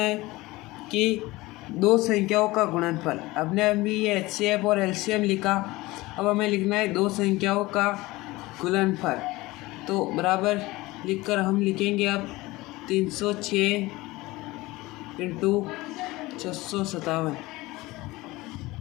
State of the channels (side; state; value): right; quieter; 20.2 dB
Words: कि दो संख्याओं का गुणनफल। अपने अभी ये HCF और LCM लिखा, अब हमें लिखना है दो संख्याओं का गुणनफल। तो बराबर लिखकर हम लिखेंगे अब 306 इंटू 657।